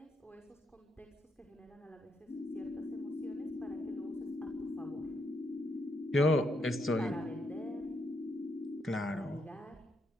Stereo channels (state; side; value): normal; both; correlation 0.78